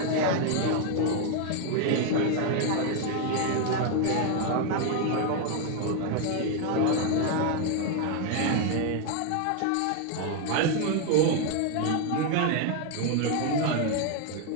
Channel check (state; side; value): different; both; correlation 0.00